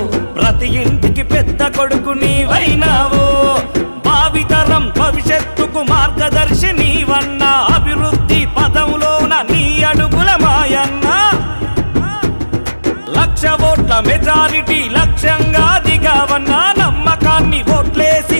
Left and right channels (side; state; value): both; inverted; correlation -1.00